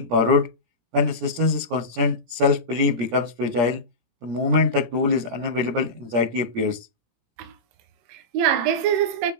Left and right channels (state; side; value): late; left; 17 ms